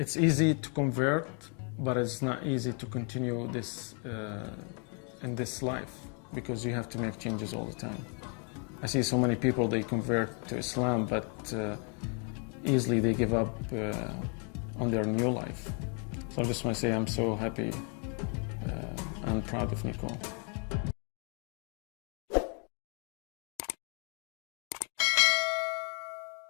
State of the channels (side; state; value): right; quieter; 38.6 dB